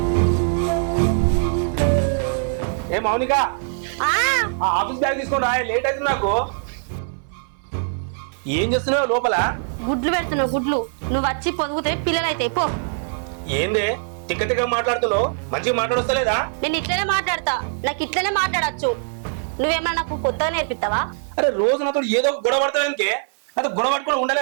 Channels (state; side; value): silent; left; 60 dB below the other